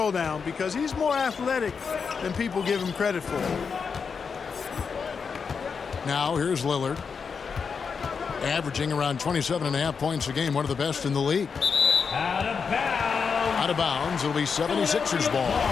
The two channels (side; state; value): right; quieter; 5.8 dB